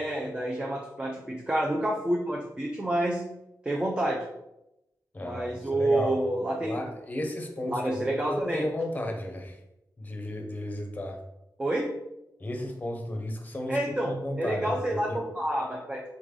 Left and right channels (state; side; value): normal; both; correlation 0.88